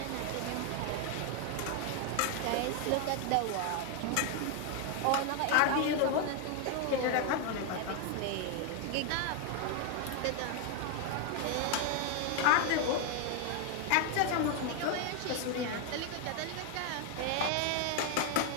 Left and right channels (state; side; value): different; both; correlation 0.00